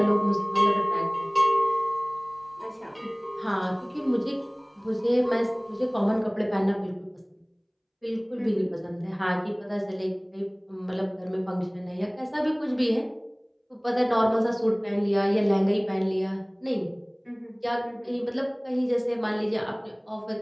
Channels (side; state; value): both; identical; correlation 1.00